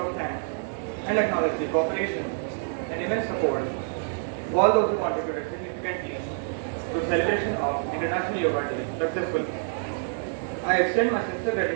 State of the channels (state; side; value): silent; left; digital silence